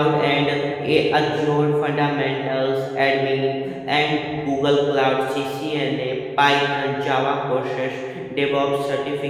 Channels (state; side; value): identical; both; correlation 1.00